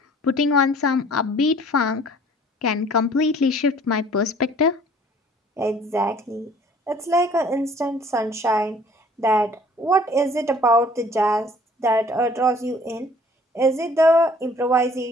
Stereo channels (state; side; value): normal; both; correlation 0.54